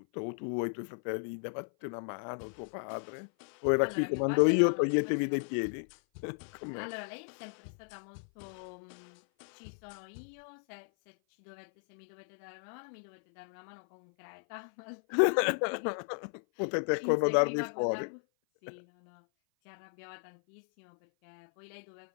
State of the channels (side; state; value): right; silent; 55 dB below the other